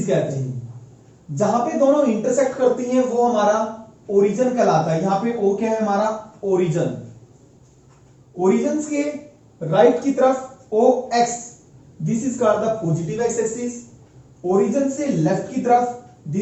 कहते हैं। जहां पे दोनों इंटरसेक्ट करती हैं वो हमारा ओरिजिन कहलाता है। यहां पे ओ क्या है, हमारा ओरिजिन। ओरिजिन के राइट की तरफ O X, this is called the positive x axis. Origin से लेफ्ट की तरफ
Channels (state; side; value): identical; both; correlation 1.00